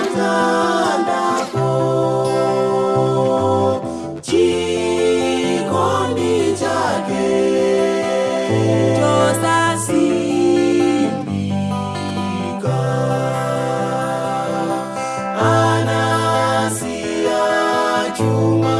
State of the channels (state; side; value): identical; both; correlation 1.00